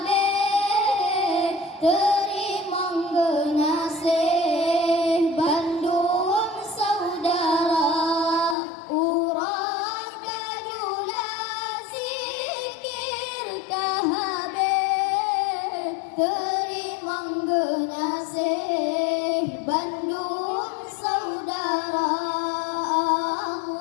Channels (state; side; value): drops out; right; at 8.6 s